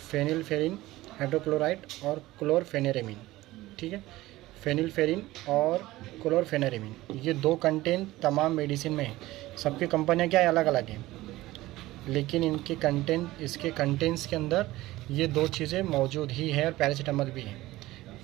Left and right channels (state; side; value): quieter; left; 17.6 dB